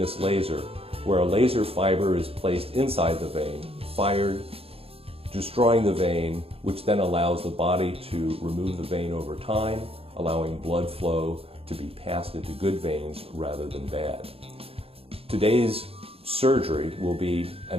laser, where a laser fiber is placed inside the vein, fired, destroying the vein, which then allows the body to remove the vein over time, allowing blood flow to be passed into good veins rather than bad. Today's surgery will be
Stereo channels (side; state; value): left; late; 0.28 ms